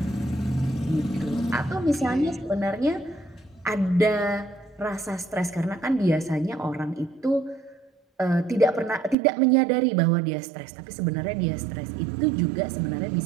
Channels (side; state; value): left; drops out; at 9.2 s